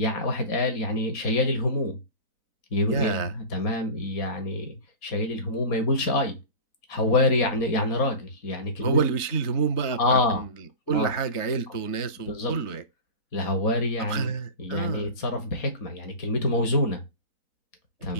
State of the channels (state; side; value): late; right; 3.9 ms